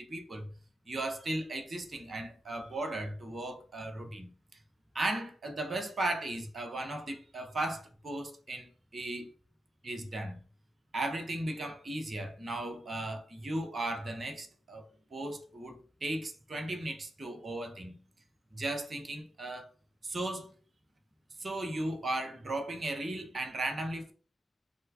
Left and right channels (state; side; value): normal; both; correlation 0.86